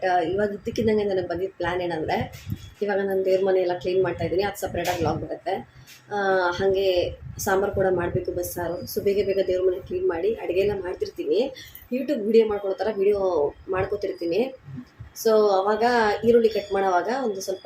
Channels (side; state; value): both; identical; correlation 1.00